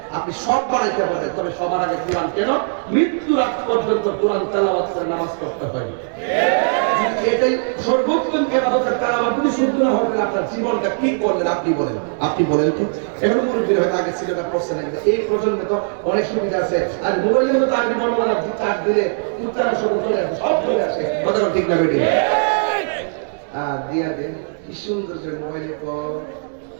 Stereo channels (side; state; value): left; silent; 66 dB below the other